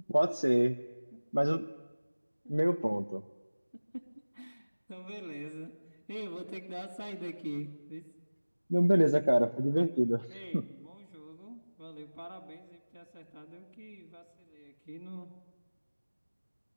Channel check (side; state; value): both; inverted; correlation -1.00